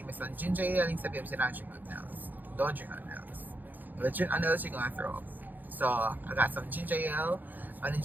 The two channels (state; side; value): late; left; 0.086 ms